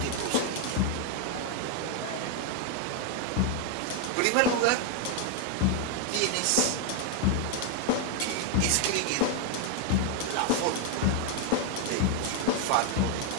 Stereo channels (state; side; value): different; both; correlation 0.00